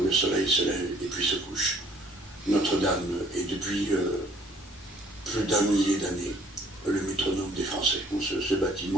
le soleil se lève et puis se couche. Notre-Dame est depuis plus d'un millier d'années le métronome des Français. Ce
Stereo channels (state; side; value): normal; both; correlation 0.59